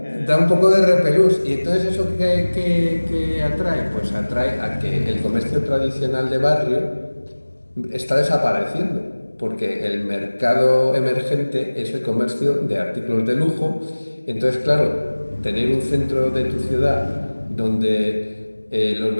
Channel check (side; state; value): both; inverted; correlation -1.00